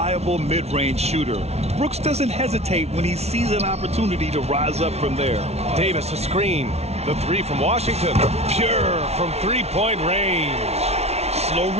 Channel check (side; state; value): left; late; 0.31 ms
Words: mid-range shooter. Brooks doesn't hesitate when he sees an opportunity to rise up from there. Davis a screen. The 3 from Washington. Pure from 3-point range. Slow